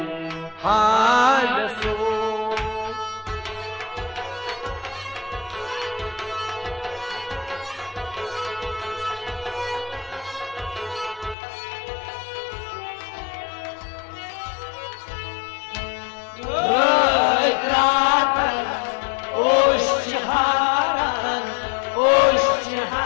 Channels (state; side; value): drops out; right; at 11.4 s